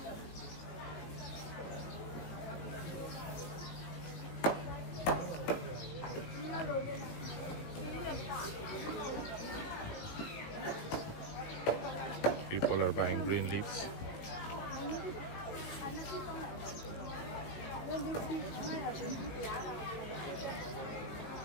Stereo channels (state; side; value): late; right; 18 ms